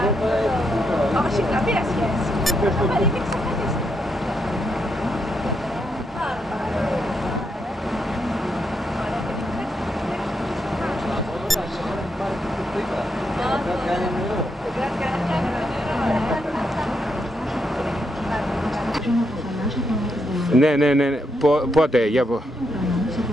Όχι, καμία σχέση. Αλλά είναι εξαφανιστή. Ναι. Πότε, για πω.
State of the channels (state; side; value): normal; both; correlation 0.80